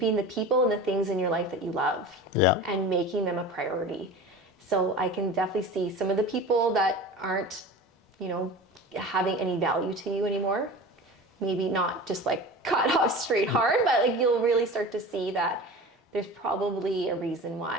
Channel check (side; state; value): both; normal; correlation 0.35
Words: the people and the things in your life that you love and making them a priority. So I can definitely see some of the people that aren't, you know, having any value to you anymore. Maybe not just like cut off straight hard, but like you'll really start to see that there's probably a reason